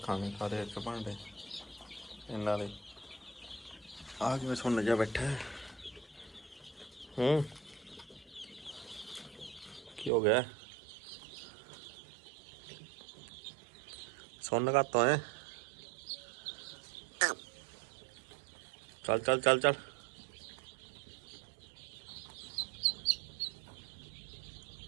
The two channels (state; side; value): drops out; left; at 10.1 s